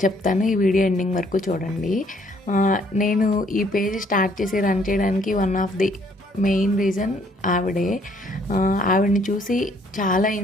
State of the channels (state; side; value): normal; both; correlation 0.64